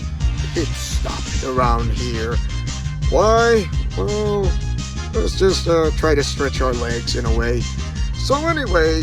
pit stop around here. Why? Well, let's just try to stretch our legs in a way. So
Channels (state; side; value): identical; both; correlation 1.00